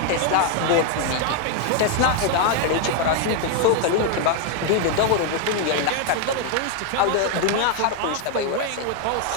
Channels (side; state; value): both; different; correlation 0.01